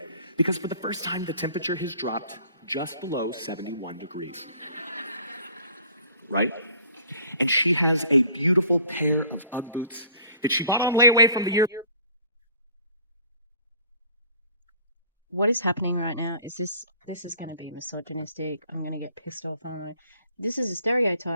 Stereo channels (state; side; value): inverted; both; correlation -0.52